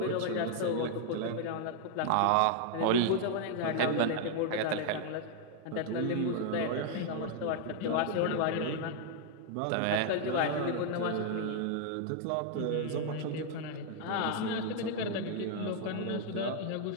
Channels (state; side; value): different; both; correlation 0.00